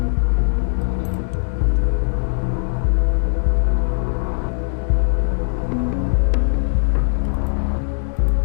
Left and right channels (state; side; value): silent; right; digital silence